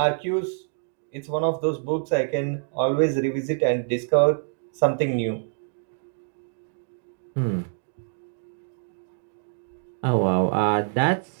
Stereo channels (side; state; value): left; silent; digital silence